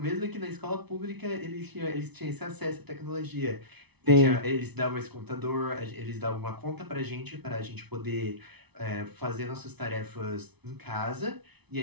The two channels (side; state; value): left; late; 0.99 ms